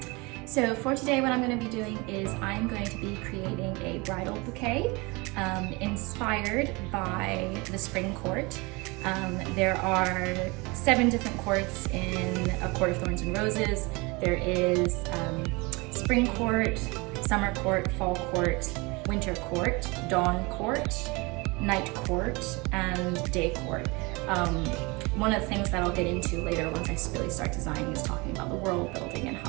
for today, what I'm going to be doing is I'm going to be creating a bridal bouquet inspired by the Spring Court. There are 7 different courts in A Court of Thorns and Roses. There is Spring Court, Summer Court, Fall Court, Winter Court, Dawn Court, Night Court, and Day Court. One of the things that I'll get into later once I really start designing is talking about the world building and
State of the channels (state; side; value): quieter; left; 26.2 dB